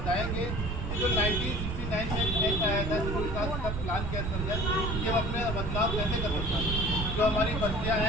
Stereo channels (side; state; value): right; noise; rumble, 2 dB below the sound